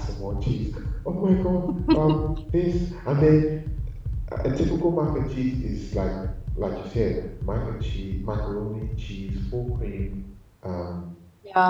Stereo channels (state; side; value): identical; both; correlation 1.00